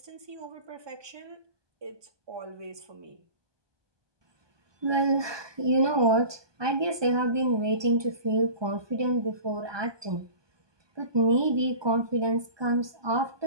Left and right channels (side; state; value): left; late; 1.2 ms